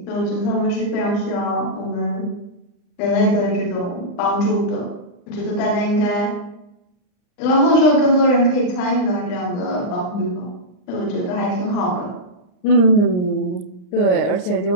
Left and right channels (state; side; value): late; right; 39 ms